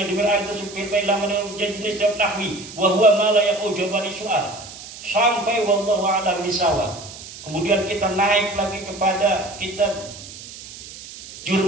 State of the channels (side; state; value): right; noise; hiss, 15 dB below the sound